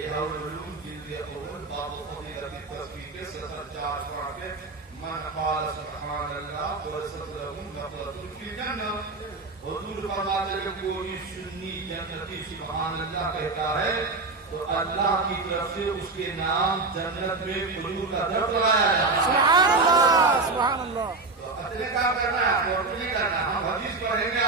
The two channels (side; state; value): left; quieter; 3.6 dB